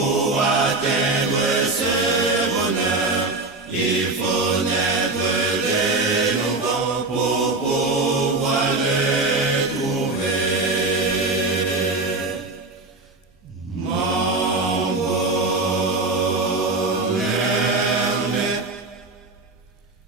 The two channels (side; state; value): left; quieter; 3.3 dB